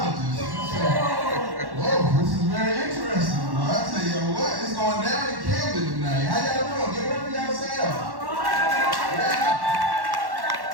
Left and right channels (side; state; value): left; late; 1.1 ms